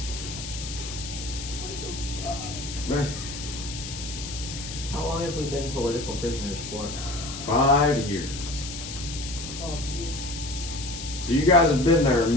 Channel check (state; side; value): noise; left; hiss, 9 dB below the sound